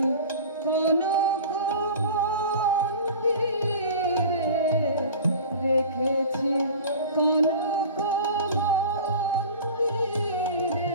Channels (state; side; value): inverted; both; correlation -0.37